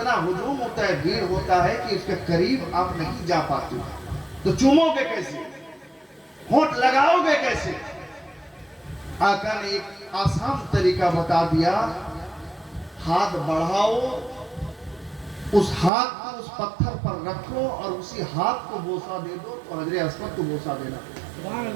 ہجوم ہوتا ہے، بھیڑ ہوتا ہے کہ اس کے قریب آپ نہیں جا پاتے، تو چومو گے کیسے؟ ہونٹ لگاؤ گے کیسے؟ آقا نے ایک آسان طریقہ بتا دیا، ہاتھ بڑھاؤ، اس ہاتھ کو اس پتھر پر رکھو اور اسی ہاتھ کو بوسہ دے دو تو حجر اسود کو بوسہ دینا۔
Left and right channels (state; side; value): drops out; left; at 15.9 s